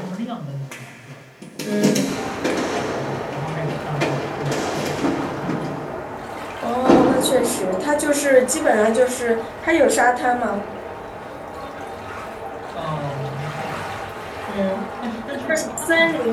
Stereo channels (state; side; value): identical; both; correlation 1.00